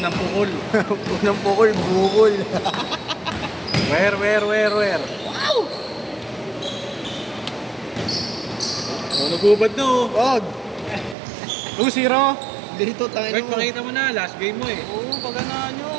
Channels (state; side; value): drops out; left; at 11.2 s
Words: pukol. Unang pukol, bukol. Where? Wow! Oh, nagubad na oh. Wag. 2-0. Dito, tangin Wait, mo. pakita mo na, last game mo eh. Oo, pagana